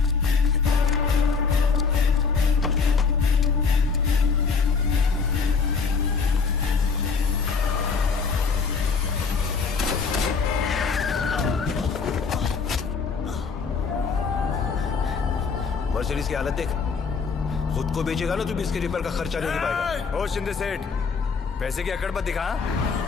मर्सिडीज की हालत देख, खुद को बेचेगा ना तो भी इसके रिपेयर का खर्चा नहीं दे पाएगा। ओ शिंदे सेठ, पैसे की अकड़ मत दिखा।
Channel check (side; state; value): right; quieter; 5.2 dB